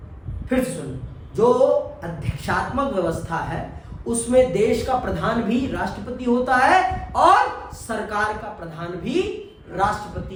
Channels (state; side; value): identical; both; correlation 1.00